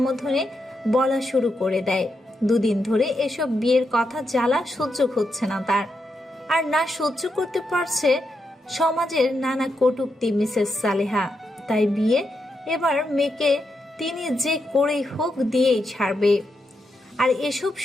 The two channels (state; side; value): normal; both; correlation 0.84